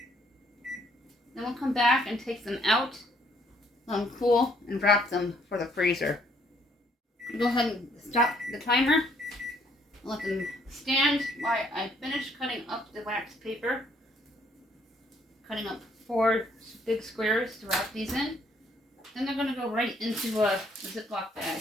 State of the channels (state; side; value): normal; both; correlation 0.66